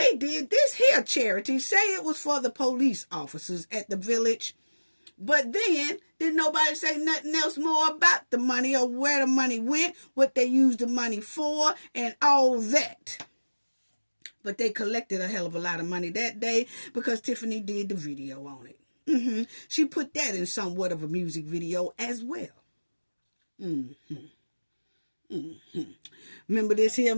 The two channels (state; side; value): inverted; both; correlation -1.00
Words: did this here charity. Say it was for the police officers at the village. But then, did nobody say nothing else more about the money or where the money went, what they used the money for, and all that. But they collected a hell of a lot of money that day because Tiffany did the video on it. She put that in somewhat of a music video as well. Remember this here